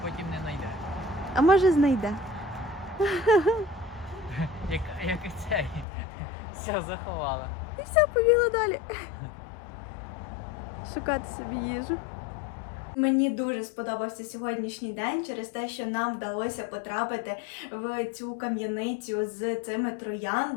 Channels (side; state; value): right; drops out; at 5.9 s